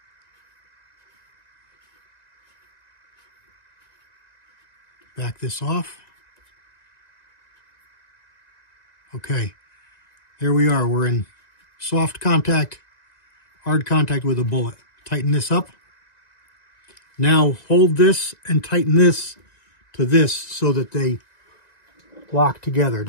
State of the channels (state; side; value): late; right; 1.9 ms